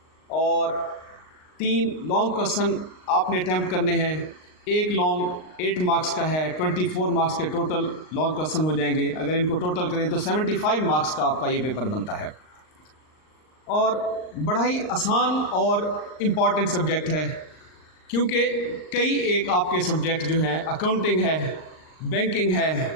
और 3 लॉन्ग क्वेश्चन आपने अटैम्प्ट करने हैं। एक लॉन्ग 8 मार्क्स का है, 24 मार्क्स के टोटल लॉन्ग क्वेश्चन हो जाएंगे। अगर इनको टोटल करें तो 75 मार्क्स का आपका ये पेपर बनता है और बड़ा ही आसान और इम्पॉर्टेंट सब्जेक्ट है, क्योंकि कई एक आपके सब्जेक्ट जो हैं अकाउंटिंग है, बैंकिंग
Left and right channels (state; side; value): late; right; 39 ms